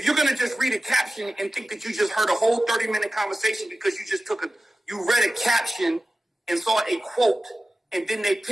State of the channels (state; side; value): normal; both; correlation 0.95